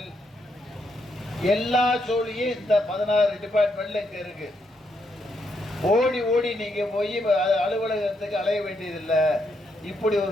எல்லா சோழியும் இந்த 16 டிபார்ட்மெண்ட்ல இங்க இருக்கு. ஓடி ஓடி நீங்க போய் அலுவலகத்துக்கு அலைய வேண்டியதில்லை. இப்படி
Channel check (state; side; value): normal; both; correlation 0.78